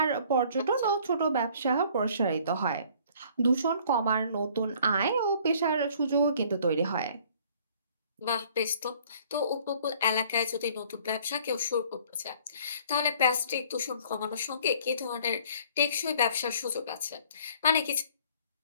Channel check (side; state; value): both; inverted; correlation -0.55